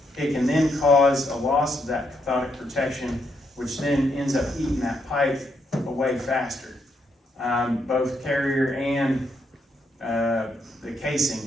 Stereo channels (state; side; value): normal; both; correlation 0.77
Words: it can then cause a loss of that cathodic protection, which then ends up eating that pipe away faster. Both carrier and the casing.